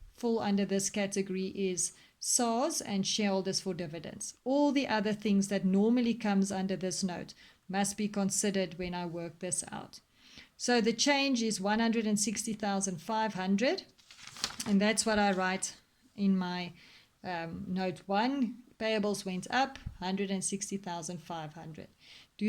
fall under this category is SARS and shareholders for dividends. All the other things that normally comes under this note must be considered when I work this out. So the change is 160,500, and that's what I write in my note 1. Payables went up 160,500.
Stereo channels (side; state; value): both; identical; correlation 1.00